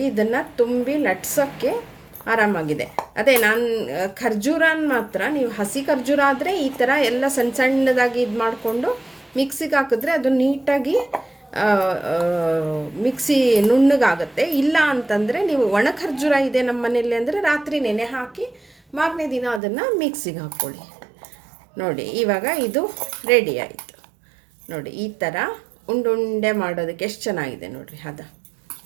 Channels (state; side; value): drops out; left; at 19.6 s